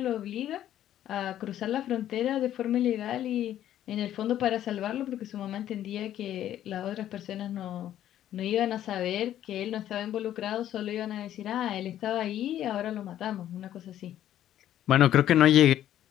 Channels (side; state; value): right; quieter; 11.8 dB